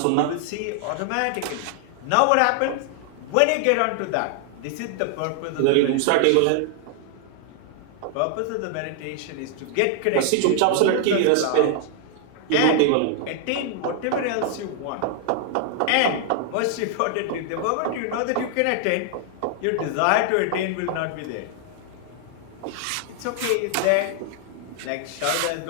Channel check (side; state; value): both; different; correlation 0.00